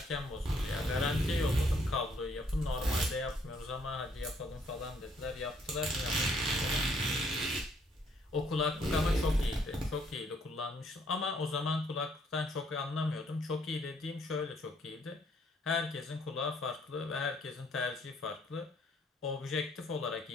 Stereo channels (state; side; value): normal; both; correlation 0.67